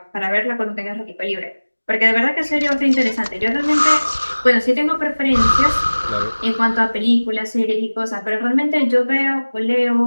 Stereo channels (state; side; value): inverted; both; correlation -1.00